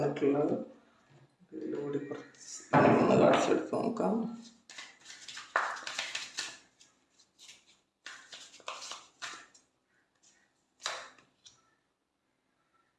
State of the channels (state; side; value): identical; both; correlation 1.00